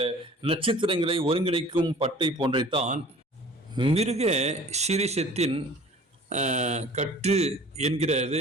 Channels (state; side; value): normal; both; correlation 0.47